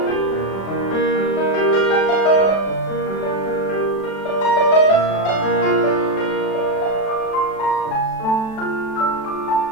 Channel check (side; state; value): right; late; 36 ms